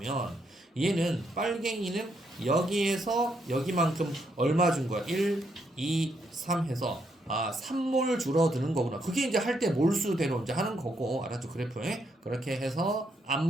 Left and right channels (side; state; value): both; normal; correlation 0.76